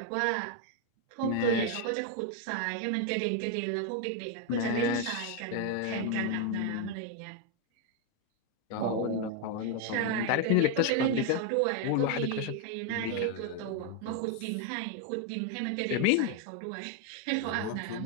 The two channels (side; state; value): both; different; correlation 0.01